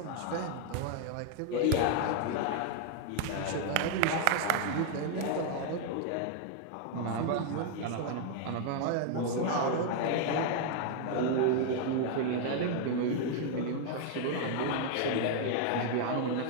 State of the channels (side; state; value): both; different; correlation 0.00